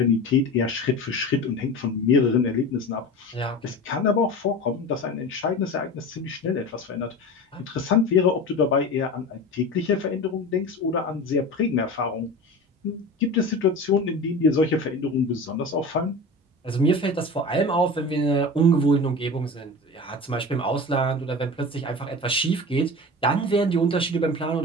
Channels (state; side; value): normal; both; correlation 0.32